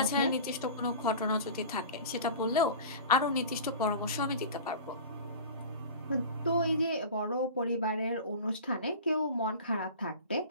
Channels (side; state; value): both; inverted; correlation -0.36